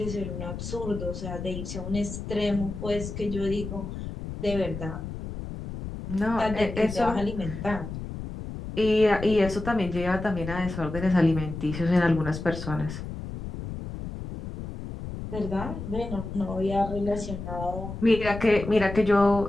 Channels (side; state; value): left; noise; rumble, 8 dB below the sound